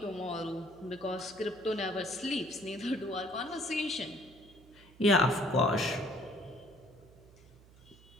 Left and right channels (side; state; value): right; noise; hum, 24 dB below the sound